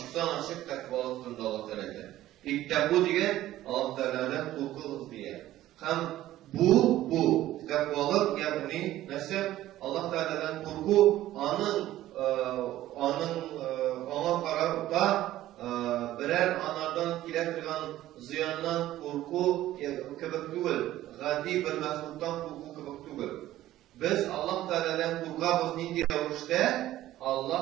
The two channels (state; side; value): quieter; left; 14.4 dB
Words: açık takvalık turunda Allah Teala. İttaku diye Allah Teala'dan korku diye. Hem bu takvalık yani nasıl Allah Teala'dan korku ona kararıp da birer anardan kiletirgan ziyandan korku kebek değil, gadi bir mesuldan korku kebek değil. Biz Allah Teala'dan korkabız nindi ravuşta